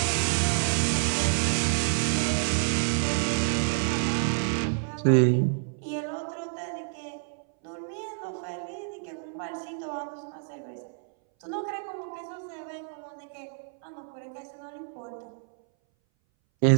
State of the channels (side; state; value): left; silent; 59 dB below the other